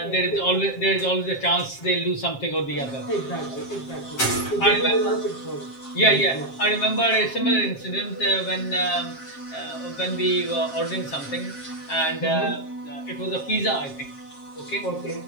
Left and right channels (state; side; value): late; right; 7.5 ms